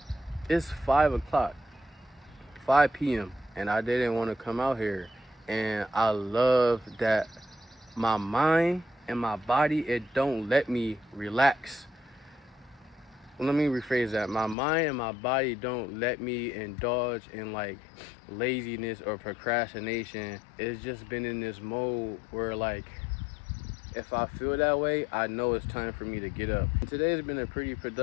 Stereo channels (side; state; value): right; drops out; at 14.6 s